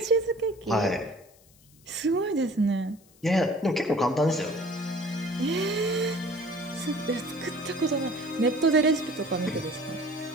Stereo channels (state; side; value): noise; left; hiss, 29 dB below the sound